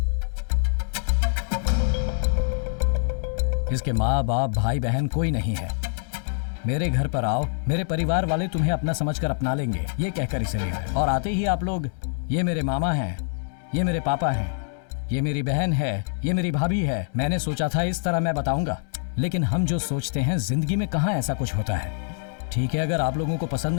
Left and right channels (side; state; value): right; silent; 62 dB below the other